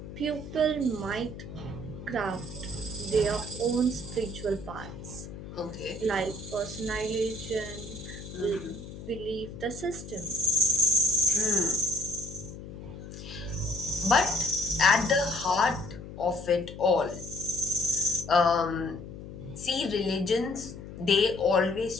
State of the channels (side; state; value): left; noise; hum, 12 dB below the sound